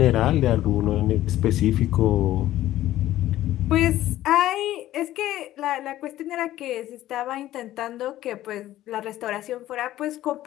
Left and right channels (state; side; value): quieter; right; 14.2 dB